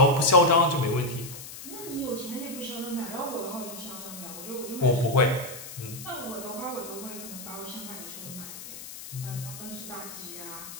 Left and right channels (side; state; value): left; noise; hiss, 12 dB below the sound